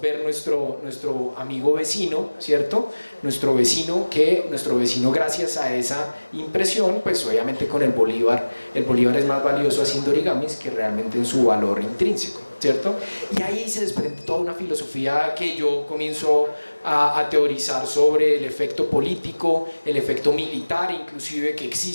ver nuestro amigo vecino, ¿cierto? Nuestro vecino, gracias a esa impresión, pues obviamente con el bolívar es más valioso haciendo origamis que realmente en su valor intrínseco, ¿cierto? Y ahí se desprende toda una filosofía que yo comienzo a teorizar sobre el efecto político, el efecto militar inclusive, que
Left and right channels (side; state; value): both; inverted; correlation -1.00